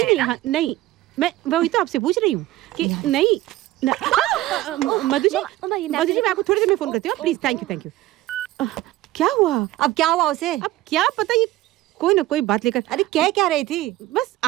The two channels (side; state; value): left; quieter; 16.2 dB